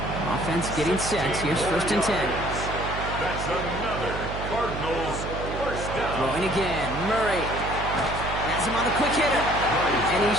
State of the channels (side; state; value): right; noise; hum, 7 dB below the sound